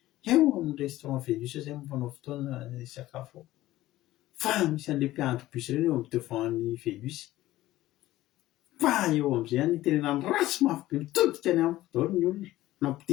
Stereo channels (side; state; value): right; quieter; 15.9 dB